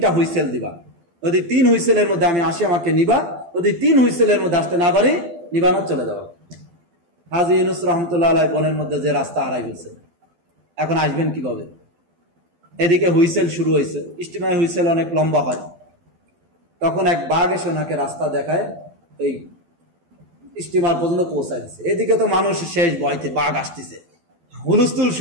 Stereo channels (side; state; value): left; late; 12 ms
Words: হুইসেল দিবা, যদি 3 হুইসেলের মধ্যে আমি আসি আমাকে নিবা, যদি 3 হুইসেলের মধ্যে আসতে না পারি নিবানো চলে যাওয়া। হাজী ইউনুস রহমতুল্লাহ আলাইহি বনের মধ্যে যে রাস্তা হারাই ফেলছে, এখন আসবেন কিভাবে? এদিকে হুইসেল শুরু হয়েছে, স্টিমার হুইসেল অনেক লম্বা হয়। তখন এক বাঘ এসে ওনাকে রাস্তা দেখায়, এই স্টিমার পর্যন্ত পৌঁছায় দিচ্ছে। এদিকে তো মানুষ শেষ ভয়তে, বাঘ আসতেছে, হুলস্থুল